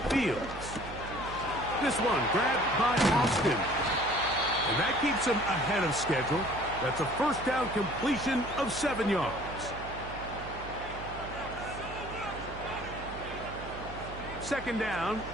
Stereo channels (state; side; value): noise; right; hum, 12 dB below the sound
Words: Fields. This one grabbed by Austin. And that keeps him ahead of schedule. That's a 1st down completion of 7 yards. Second down